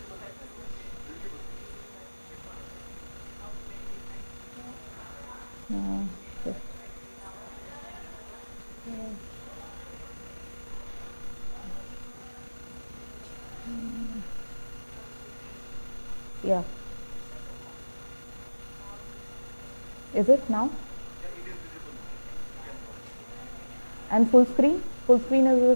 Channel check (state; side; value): inverted; both; correlation -1.00